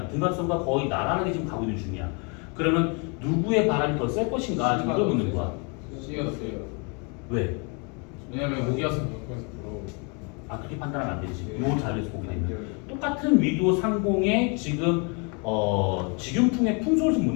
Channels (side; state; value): right; quieter; 34.3 dB